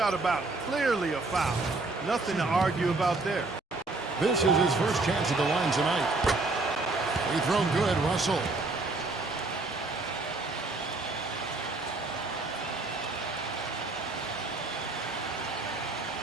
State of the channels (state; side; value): quieter; left; 3.4 dB